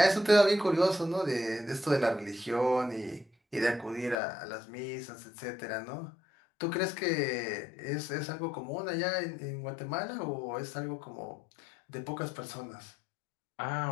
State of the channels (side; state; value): right; drops out; at 4.2 s